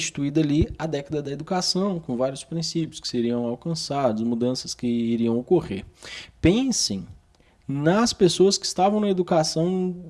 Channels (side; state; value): both; identical; correlation 1.00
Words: ali a década da educação, com vários princípios que seriam alcançados, mudanças que iriam ocorrer. Pensem nas pessoas que estavam na